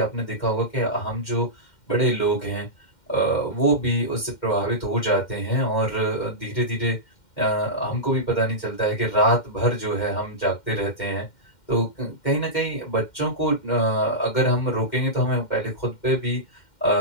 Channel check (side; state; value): right; late; 2.1 ms